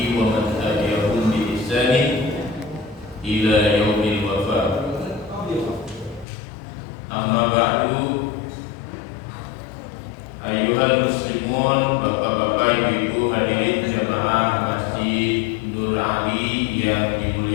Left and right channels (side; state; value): right; drops out; at 6.2 s